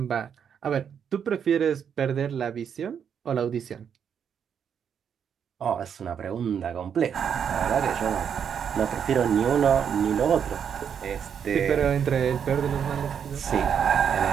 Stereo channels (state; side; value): quieter; left; 7.8 dB